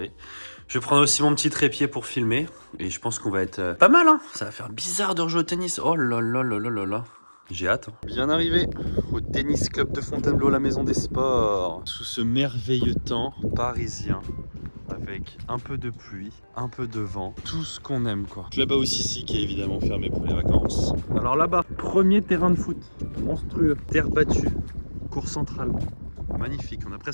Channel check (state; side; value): inverted; both; correlation -1.00